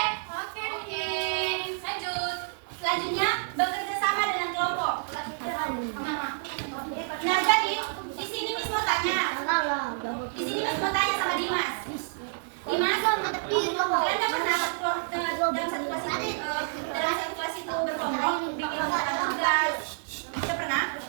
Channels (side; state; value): left; silent; digital silence